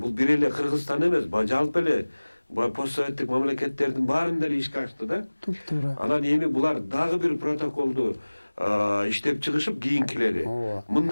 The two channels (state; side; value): inverted; both; correlation -1.00